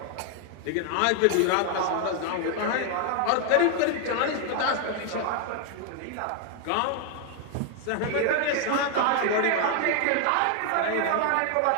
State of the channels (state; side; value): different; both; correlation 0.00